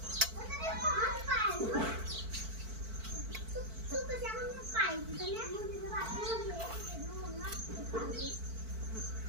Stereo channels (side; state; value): left; late; 4.5 ms